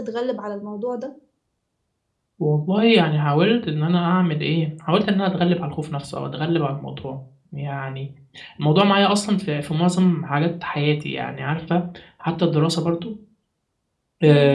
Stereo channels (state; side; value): identical; both; correlation 1.00